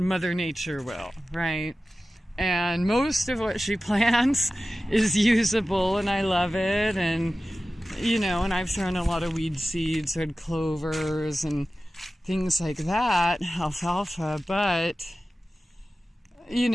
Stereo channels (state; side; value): normal; both; correlation 0.95